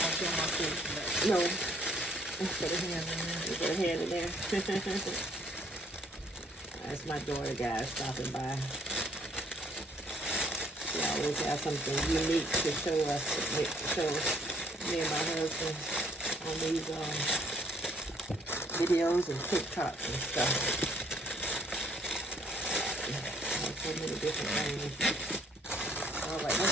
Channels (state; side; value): normal; both; correlation 0.63